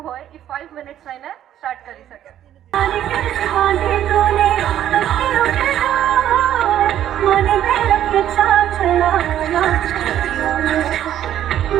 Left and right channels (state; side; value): quieter; left; 11.3 dB